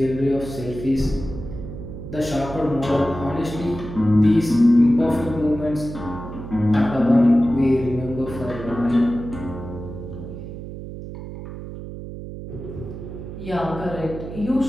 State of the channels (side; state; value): right; noise; hum, 10 dB below the sound